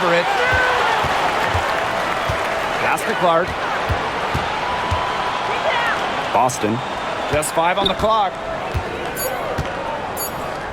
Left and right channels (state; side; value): identical; both; correlation 1.00